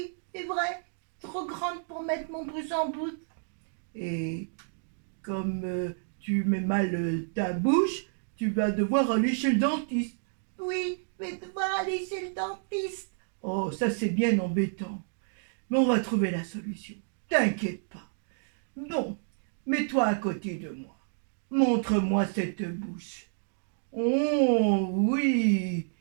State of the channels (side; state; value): left; silent; digital silence